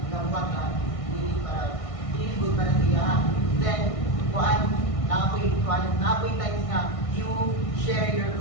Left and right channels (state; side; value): late; right; 1.6 ms